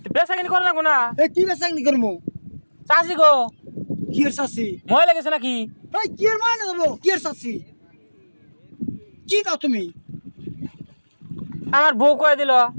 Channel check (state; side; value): inverted; both; correlation -1.00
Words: বেচা কিনি করে না কোনা এই কি বেসাংনি করবো? চাষি গো কি এর চাষি? ময় লেগেছে নাকি এই কি এর মানে দেবো? কি এর চাষি? কি কাও তুমি? আমার বউ কয়ে দিল